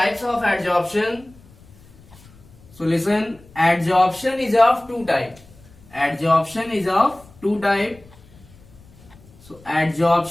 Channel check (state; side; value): noise; left; rumble, 25 dB below the sound